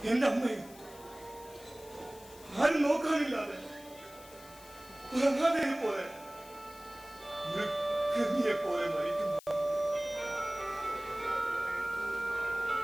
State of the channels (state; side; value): noise; left; hiss, 20 dB below the sound